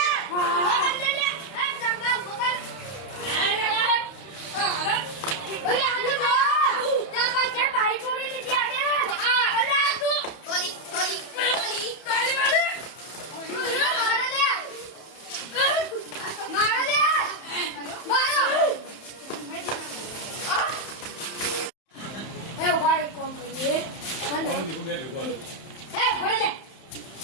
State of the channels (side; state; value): right; late; 31 ms